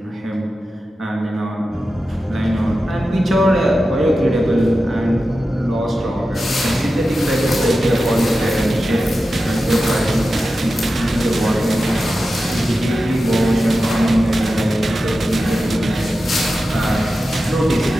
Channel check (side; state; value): both; normal; correlation 0.92